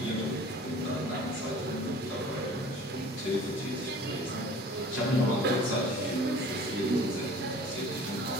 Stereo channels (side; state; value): both; normal; correlation 0.46